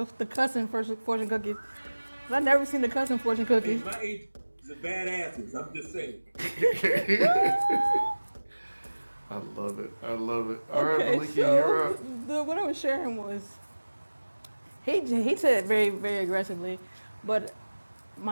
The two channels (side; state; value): both; inverted; correlation -1.00